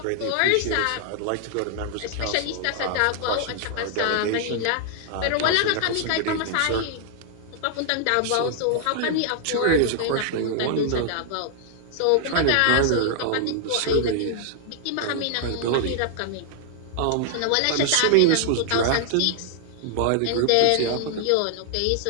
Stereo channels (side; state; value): both; different; correlation 0.00